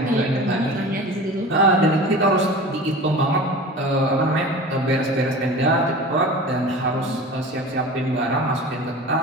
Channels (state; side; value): normal; both; correlation 0.36